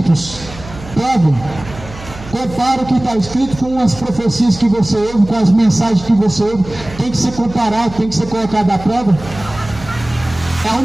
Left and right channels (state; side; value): noise; right; hum, 16 dB below the sound